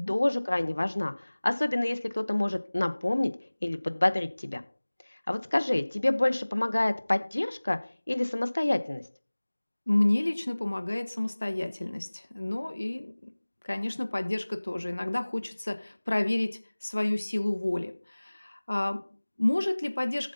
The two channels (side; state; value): both; inverted; correlation -1.00